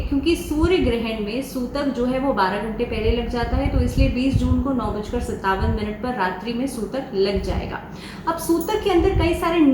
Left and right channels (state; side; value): identical; both; correlation 1.00